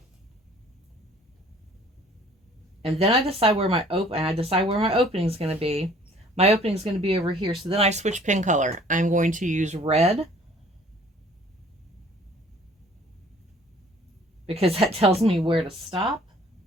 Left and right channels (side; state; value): both; normal; correlation 0.54